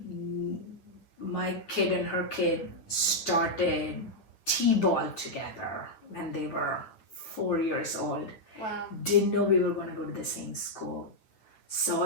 My kid and her kid started T-ball together when they were 4 years old. Wow. Didn't know we were going to go to the same school. Saw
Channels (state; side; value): late; right; 9.1 ms